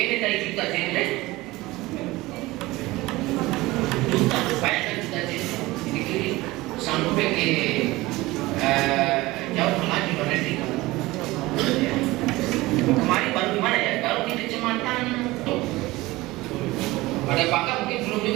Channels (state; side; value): quieter; left; 19.8 dB